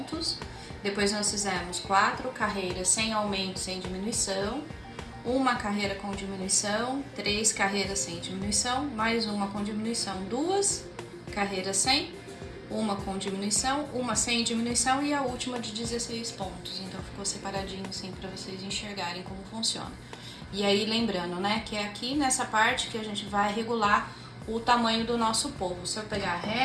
Depois nós fizemos 4 carreiras sem aumento, sem diminuição, uma carreira com diminuição, 3 carreiras sem diminuição, mais uma com diminuição, 2 carreiras sem, uma com diminuição, uma sem diminuição e a última de 16 pontos. Então ficou separadinho assim para vocês enxergarem como funciona. E aí lembrando, né, que é aqui nessa parte que a gente vai regular o tamanho do nosso polvo. Se eu pegar a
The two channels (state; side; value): identical; both; correlation 1.00